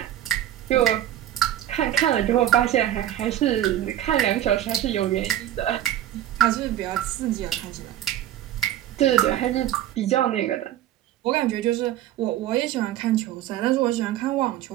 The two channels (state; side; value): quieter; left; 12.4 dB